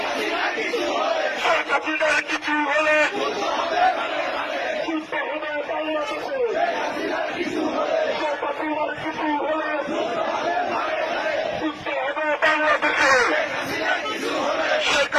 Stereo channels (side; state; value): both; identical; correlation 1.00